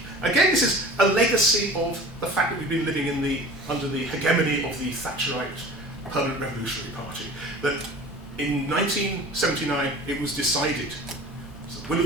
Again, this is a legacy of the fact that we've been living under the hegemony of the Thatcherite Permanent Revolutionary Party. That in 1979 it was decided, it's the will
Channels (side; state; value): both; normal; correlation 0.41